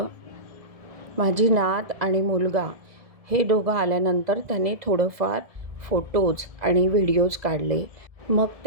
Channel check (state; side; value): late; left; 1.7 ms